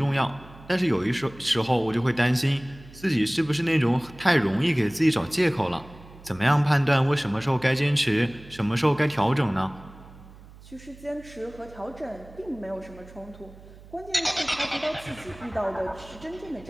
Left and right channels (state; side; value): noise; right; hum, 20 dB below the sound